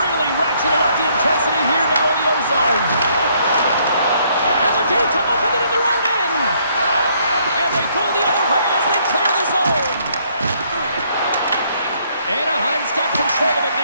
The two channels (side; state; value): both; inverted; correlation -0.67